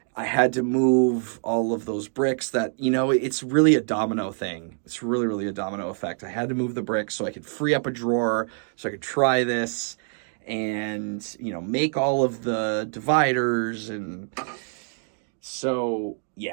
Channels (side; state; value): left; silent; 61 dB below the other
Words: I had to move all of those bricks that, you know, it's really a domino thing. It's really, really a domino effect. I had to move the bricks so I could free up a drawer so I could try this and, you know, make all of the dividers. And so,